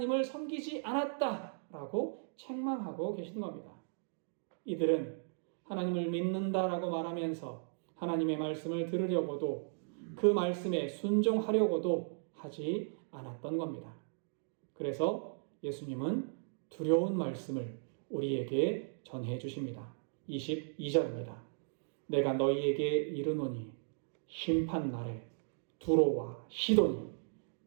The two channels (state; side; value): silent; left; digital silence